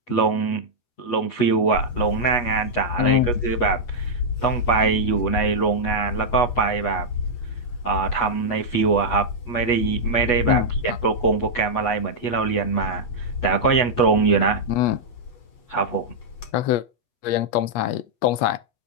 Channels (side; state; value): right; late; 8.3 ms